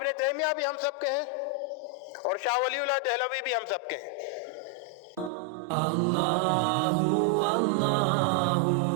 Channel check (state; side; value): drops out; left; at 5.3 s